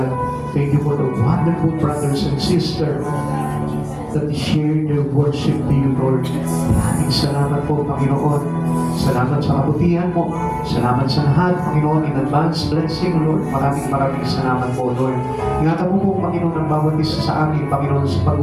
Thank you for the wonderful brothers and sisters that share their worship to you, Lord. Maraming salamat po, Panginoon. Salamat sa kabutihan mo. Salamat sa lahat, Panginoon, in advance blessing, Lord. Maraming salamat po, Lord. Ingatan mo po, Panginoon, ang bawat isa sa amin, Panginoon, sa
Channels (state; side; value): identical; both; correlation 1.00